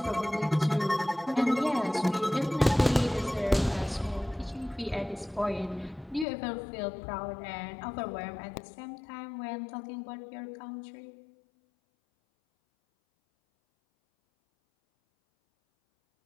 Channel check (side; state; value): right; drops out; at 6.2 s